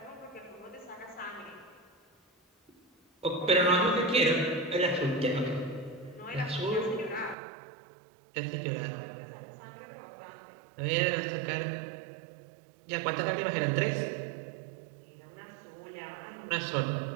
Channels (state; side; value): drops out; left; at 7.4 s